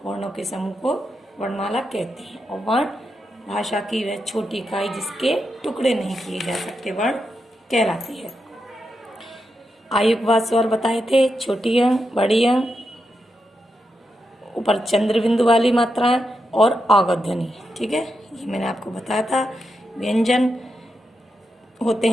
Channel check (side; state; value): both; normal; correlation 0.86